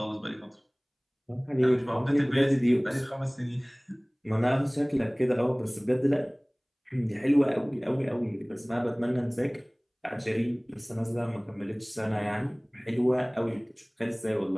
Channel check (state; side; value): identical; both; correlation 1.00